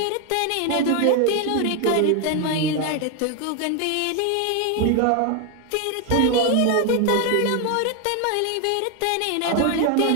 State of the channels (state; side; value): different; both; correlation 0.01